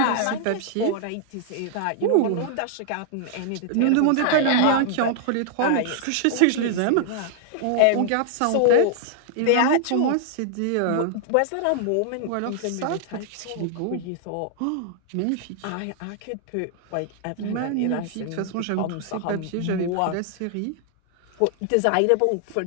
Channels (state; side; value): different; both; correlation 0.00